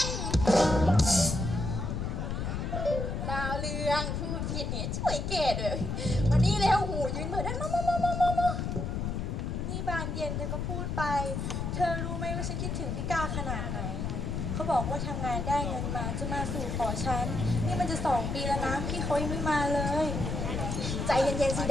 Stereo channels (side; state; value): left; noise; rumble, 2 dB below the sound